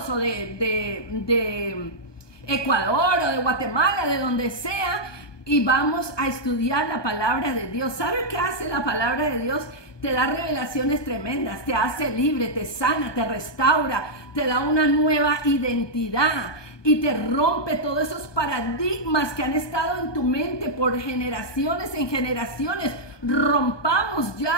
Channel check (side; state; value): right; late; 1.2 ms